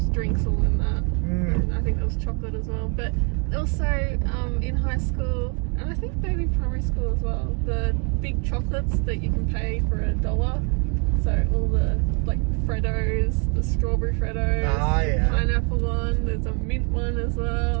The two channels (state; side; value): quieter; left; 34.9 dB